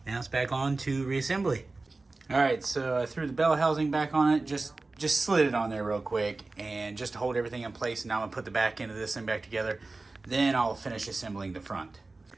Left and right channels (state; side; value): quieter; left; 3.4 dB